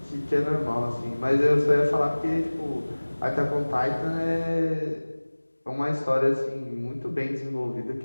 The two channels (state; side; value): inverted; both; correlation -1.00